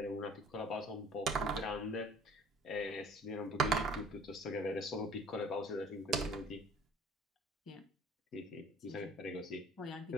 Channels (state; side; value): normal; both; correlation 0.51